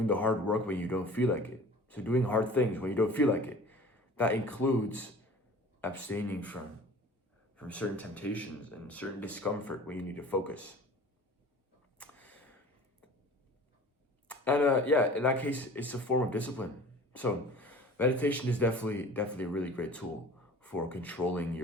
the hard work when you don't feel like it. So doing hard things when you don't feel like it. That includes abstaining from certain temptations and certain discomfort when you need to focus. And in that case, it's a form of discipline. So meditation is definitely a really great tool for controlling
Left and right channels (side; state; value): both; normal; correlation 0.44